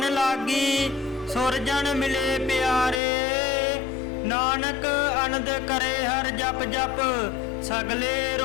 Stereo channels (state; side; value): drops out; right; at 3.0 s